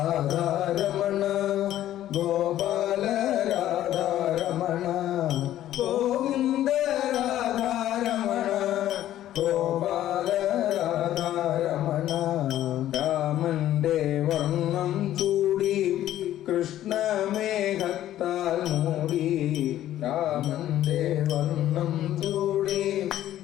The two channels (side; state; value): right; quieter; 12.7 dB